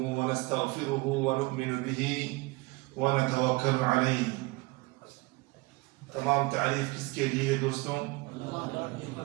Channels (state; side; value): quieter; left; 23.8 dB